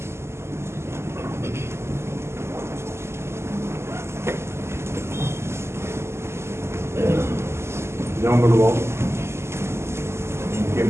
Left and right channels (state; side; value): late; left; 0.13 ms